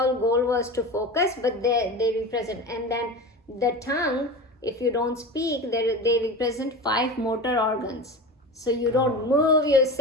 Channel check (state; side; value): normal; both; correlation 0.29